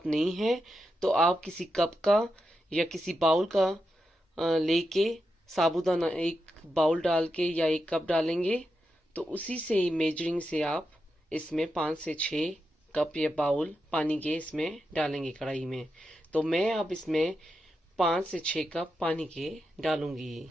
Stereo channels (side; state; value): both; normal; correlation 0.87